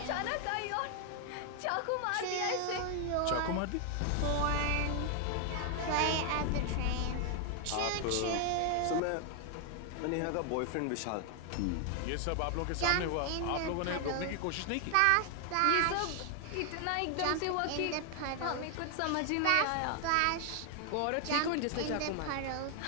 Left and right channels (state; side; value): different; both; correlation 0.00